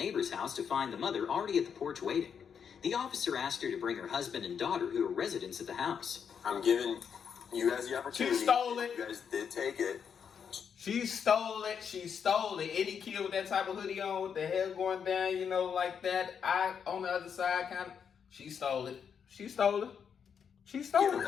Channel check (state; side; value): quieter; right; 7.2 dB